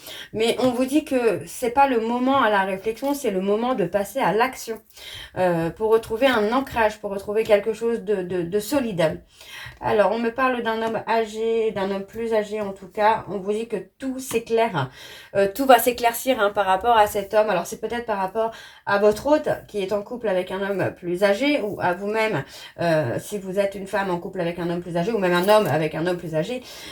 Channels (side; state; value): both; identical; correlation 1.00